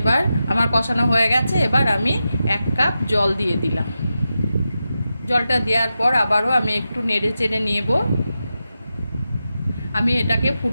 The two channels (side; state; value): both; inverted; correlation -0.90